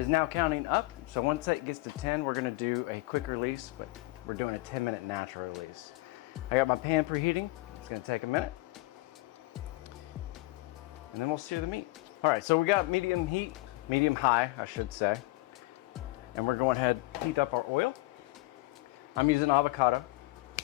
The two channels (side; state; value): right; quieter; 21.1 dB